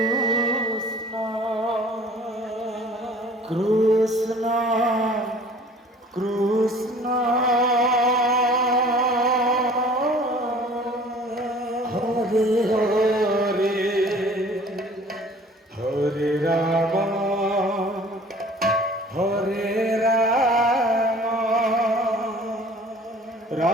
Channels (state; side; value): normal; both; correlation 0.49